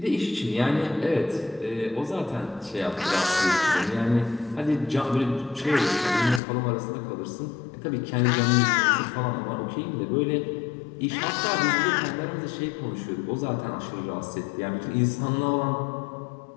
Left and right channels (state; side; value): drops out; right; at 6.4 s